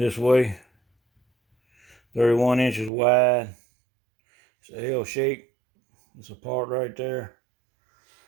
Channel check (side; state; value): left; drops out; at 2.9 s